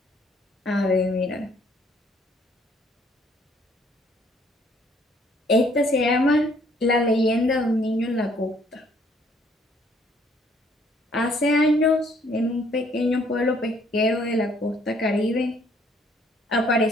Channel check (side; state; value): both; normal; correlation 0.64